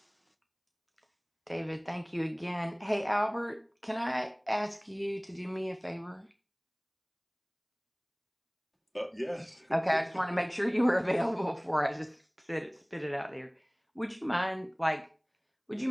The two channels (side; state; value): both; identical; correlation 1.00